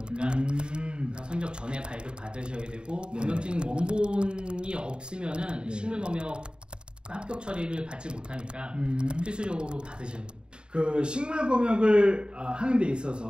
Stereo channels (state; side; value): late; left; 0.051 ms